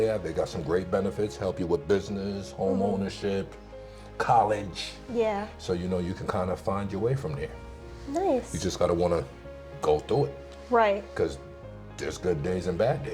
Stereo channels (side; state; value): both; identical; correlation 1.00